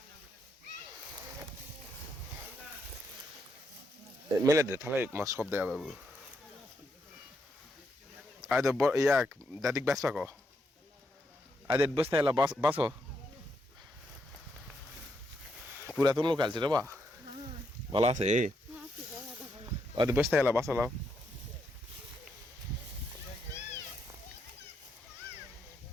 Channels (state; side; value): normal; both; correlation 0.79